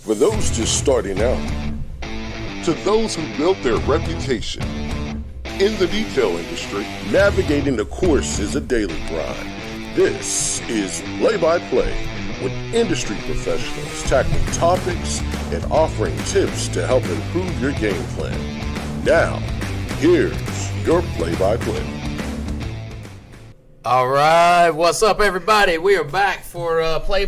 For those just starting out, to those who built their reputation. In the detail industry, navigating the course is a daily grind. This is Play-by-Play, with industry professionals tackling topics and offering tips to help improve your game plan. Now, here's your play-by-play. All right, what's up, everybody? We are back for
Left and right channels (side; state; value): both; identical; correlation 1.00